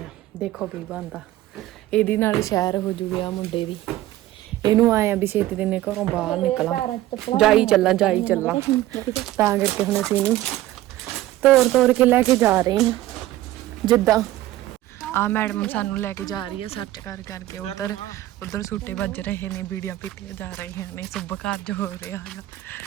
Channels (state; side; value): quieter; left; 15.3 dB